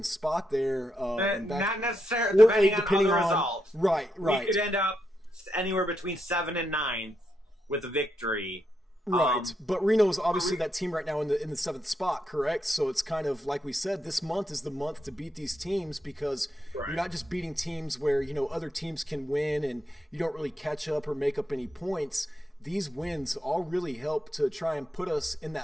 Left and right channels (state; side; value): normal; both; correlation 0.82